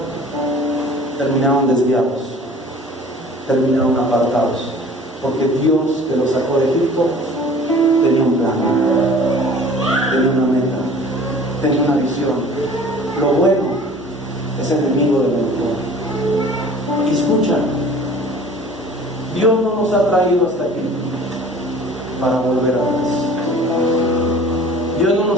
terminaron desviados, terminaron apartados, porque Dios, que los sacó de Egipto, tenía un plan, tenía una meta, tenía una visión. Lo bueno es enemigo de lo mejor. Y escucha, Dios no nos ha traído hasta aquí para volver atrás. Dios no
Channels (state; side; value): normal; both; correlation 0.47